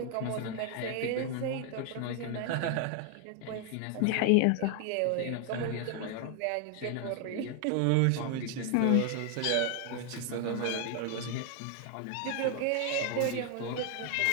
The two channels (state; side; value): different; both; correlation 0.00